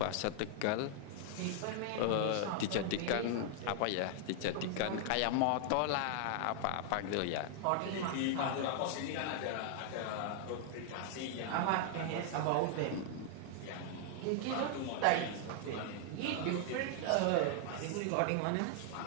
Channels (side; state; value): both; different; correlation 0.00